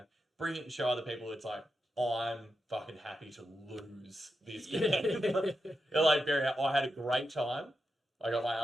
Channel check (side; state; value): both; normal; correlation 0.87